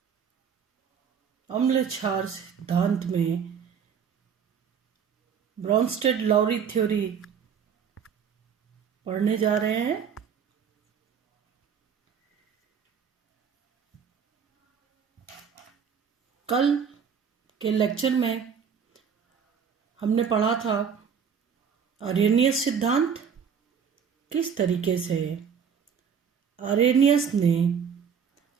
अम्ल क्षार सिद्धांत में ब्रॉन्स्टेड-लॉरी थ्योरी पढ़ने जा रहे हैं। कल के लेक्चर में हमने पढ़ा था आरेनियस सिद्धांत। किस तरीके से आरेनियस ने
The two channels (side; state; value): left; quieter; 7.1 dB